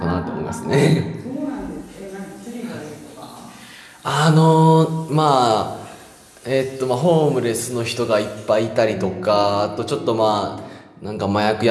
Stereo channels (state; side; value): identical; both; correlation 1.00